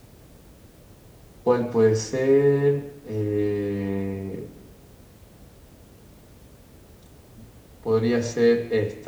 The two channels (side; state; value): both; identical; correlation 1.00